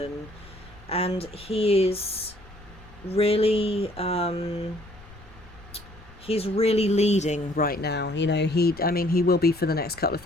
And he is really he's really leading right now. You know, I mean, he will be for the next couple of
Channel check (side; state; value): left; noise; rumble, 21 dB below the sound